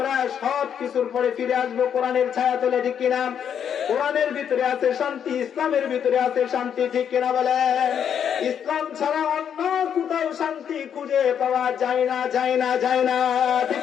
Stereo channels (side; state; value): right; quieter; 8.4 dB